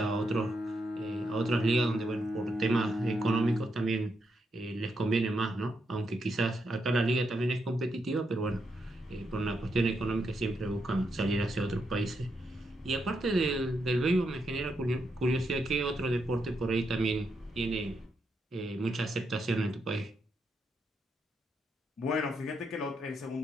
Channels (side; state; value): both; normal; correlation 0.81